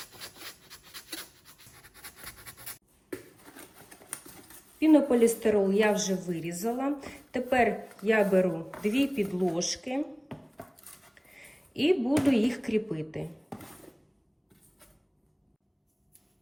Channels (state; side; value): identical; both; correlation 1.00